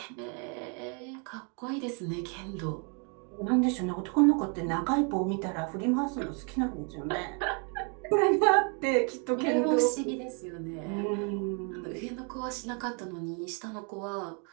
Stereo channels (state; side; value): quieter; left; 37.4 dB